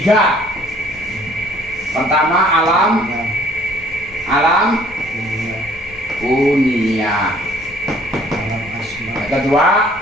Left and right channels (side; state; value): left; noise; rumble, 23 dB below the sound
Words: Pertama alam kunia. Yang kedua